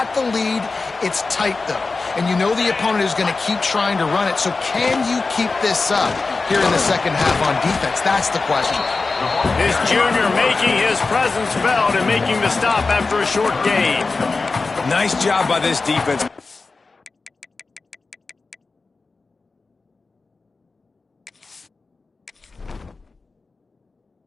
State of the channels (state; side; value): quieter; right; 3.9 dB